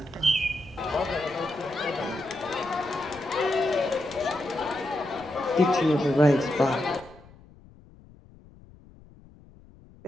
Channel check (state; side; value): noise; left; rumble, 23 dB below the sound